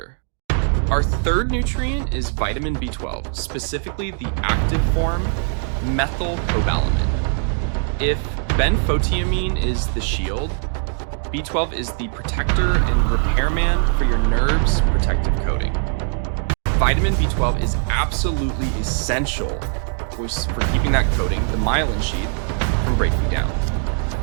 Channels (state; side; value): silent; left; 55 dB below the other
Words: Our third nutrient is vitamin B12, specifically the active form, methylcobalamin. If benfotiamine is the shield, B12 is the protector and repairman for your nerves' protective coating. Vitamin B12 is absolutely essential for keeping that coating, the myelin sheath, from breaking down.